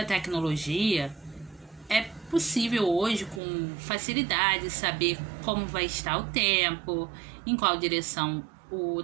tecnologia, é possível hoje, com facilidade, saber como vai estar o tempo, em qual direção o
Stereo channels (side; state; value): left; drops out; at 3.4 s